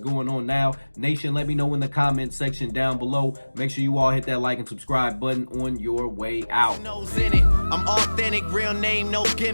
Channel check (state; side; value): inverted; both; correlation -1.00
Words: on now? Nation, let me know in the comment section down below. Make sure you all hit that like and subscribe button on your way out. In it. I'm authentic, real name, no